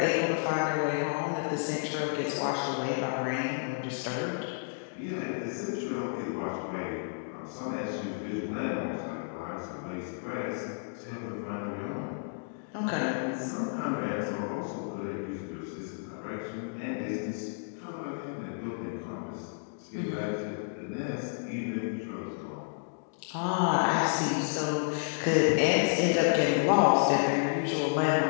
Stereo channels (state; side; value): silent; right; digital silence